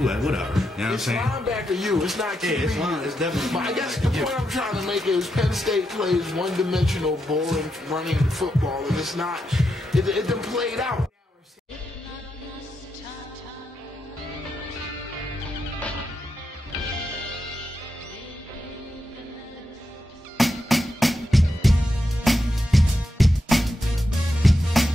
Whatever. You know what I'm saying? It's linebacker you, it's not QB. Yeah, it's definitely. But I guess the point I'm trying to make is Penn State plays one-dimensional, boring, running football, and it's not, it done played out.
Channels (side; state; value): both; normal; correlation 0.85